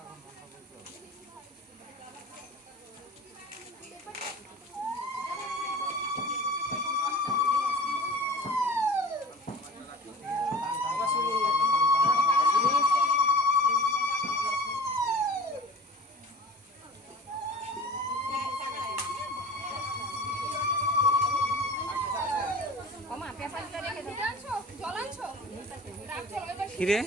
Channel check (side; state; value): both; normal; correlation 0.41